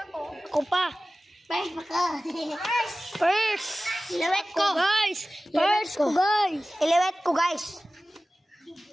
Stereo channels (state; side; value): normal; both; correlation 0.96